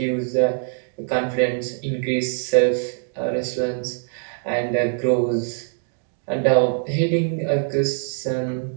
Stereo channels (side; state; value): left; silent; 58 dB below the other